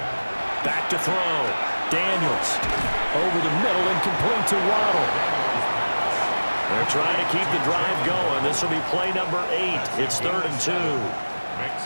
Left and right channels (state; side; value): inverted; both; correlation -1.00